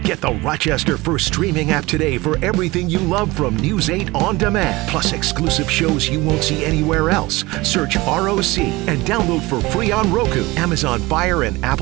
Get the Rochester First streaming app today for everything you love from News 8 On Demand, plus exclusive shows you won't see anywhere else. Search ROC and download for free on Roku, Amazon Fire, and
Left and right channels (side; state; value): left; quieter; 21.4 dB